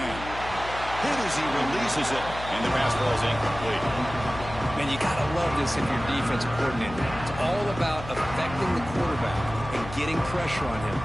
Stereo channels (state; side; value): noise; left; hum, 11 dB below the sound